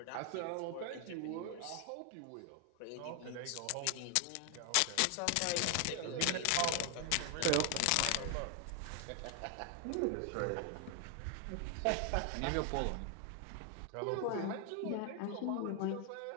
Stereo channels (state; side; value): different; both; correlation 0.00